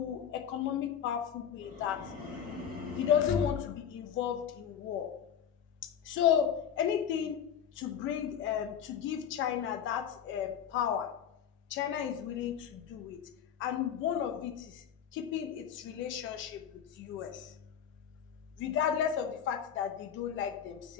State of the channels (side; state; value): right; quieter; 8.6 dB